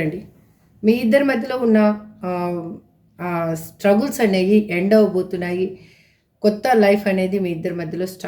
మీ ఇద్దరి మధ్యలో ఉన్న స్ట్రగుల్స్ అనేవి ఎండ్ అవ్వబోతున్నాయి. కొత్త లైఫ్ అనేది మీ ఇద్దరి మధ్యలో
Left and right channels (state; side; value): identical; both; correlation 1.00